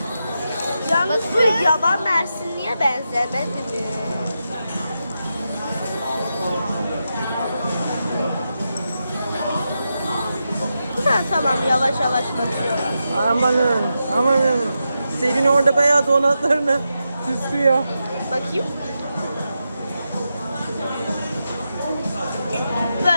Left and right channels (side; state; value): both; inverted; correlation -0.88